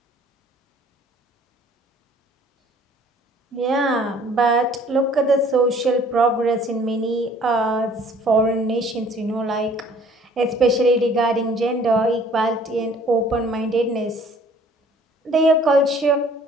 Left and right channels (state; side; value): normal; both; correlation 0.55